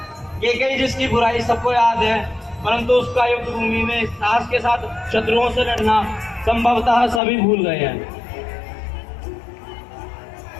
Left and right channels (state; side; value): drops out; right; at 7.2 s